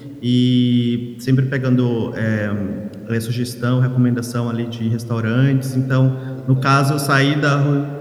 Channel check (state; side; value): identical; both; correlation 1.00